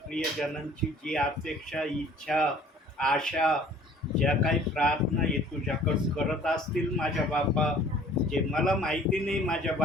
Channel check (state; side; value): normal; both; correlation 0.52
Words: प्रियजनांची जी अपेक्षा, इच्छा, आशा, ज्या काही प्रार्थना हे तुझ्याकडं करत असतील माझ्या बापा, जे मला माहिती नाही माझ्या